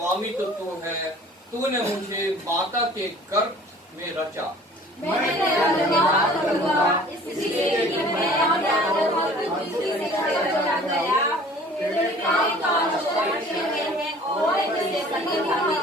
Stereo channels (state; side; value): normal; both; correlation 0.49